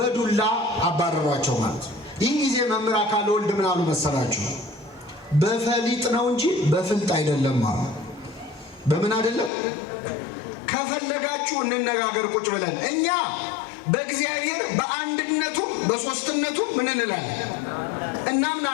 አባረሯቸው ማለት ነው። ይህ ጊዜ መምህር አካለ ወልድ ምን አሉ መሰላችሁ? በፈሊጥ ነው እንጂ በፍልጥ አይደለም አሉ። በምን አይደለም? ከፈለጋችሁ እንነጋገር ቁጭ ብለን። እኛ በእግዚአብሔር በአንድነቱ በሶስትነቱ ምን እንላለን?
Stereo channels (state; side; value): drops out; right; at 9.5 s